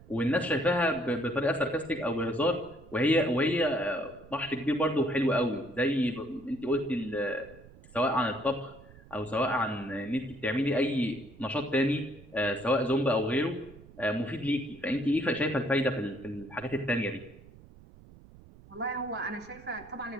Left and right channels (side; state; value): right; noise; rumble, 21 dB below the sound